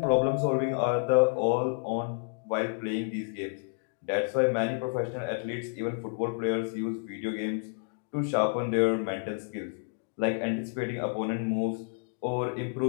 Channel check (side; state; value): right; silent; digital silence